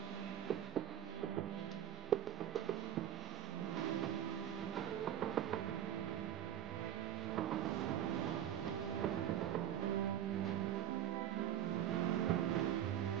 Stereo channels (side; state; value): left; quieter; 10.6 dB